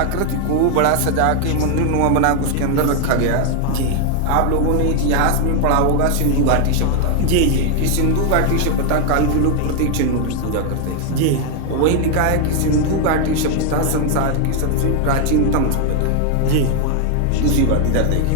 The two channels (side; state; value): both; different; correlation 0.00